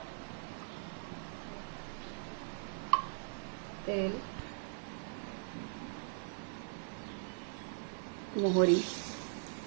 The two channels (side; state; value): left; silent; 51 dB below the other